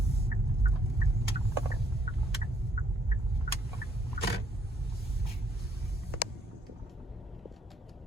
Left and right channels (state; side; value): normal; both; correlation 0.70